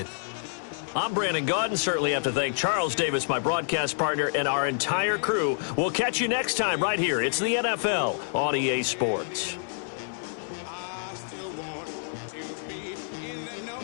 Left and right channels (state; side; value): silent; right; 59 dB below the other